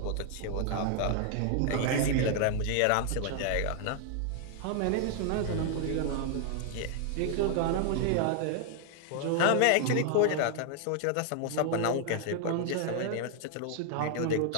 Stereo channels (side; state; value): both; different; correlation 0.00